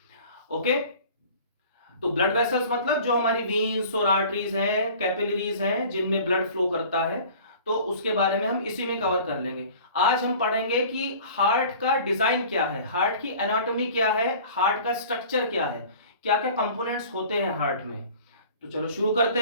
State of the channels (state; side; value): inverted; both; correlation -0.45